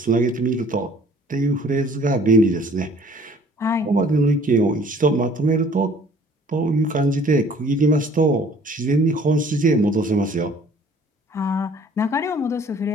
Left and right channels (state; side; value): normal; both; correlation 0.54